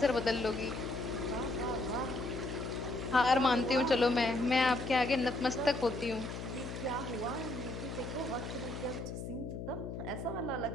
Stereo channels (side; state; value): left; noise; hum, 7 dB below the sound